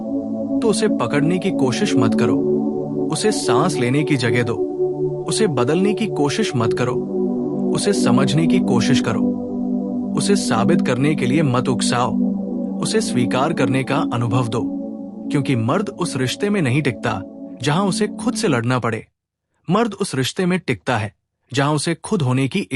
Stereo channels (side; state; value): both; identical; correlation 1.00